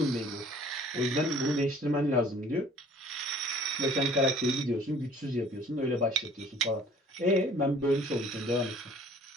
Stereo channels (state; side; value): normal; both; correlation 0.52